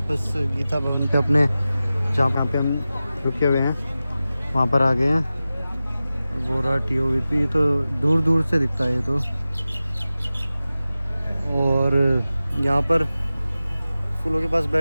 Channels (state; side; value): inverted; both; correlation -0.95